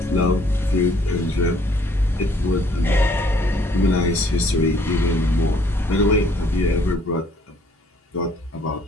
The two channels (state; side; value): normal; both; correlation 0.62